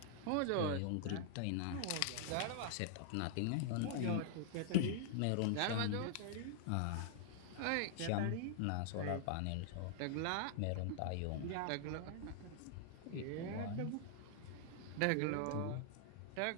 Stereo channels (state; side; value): different; both; correlation -0.01